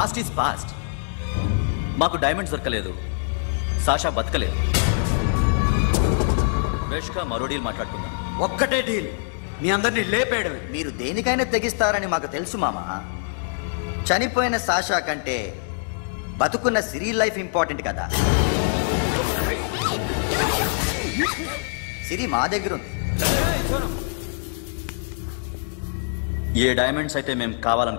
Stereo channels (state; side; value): silent; right; digital silence